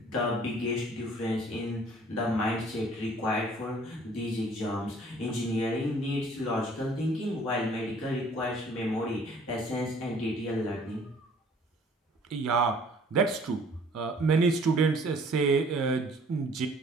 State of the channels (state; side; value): normal; both; correlation 0.55